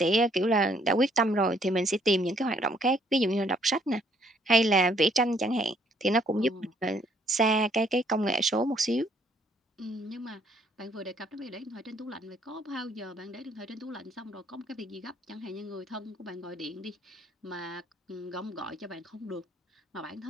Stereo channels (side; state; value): both; normal; correlation 0.66